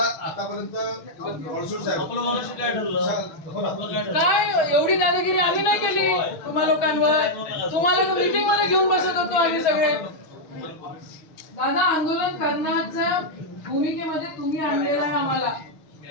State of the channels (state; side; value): late; right; 6.1 ms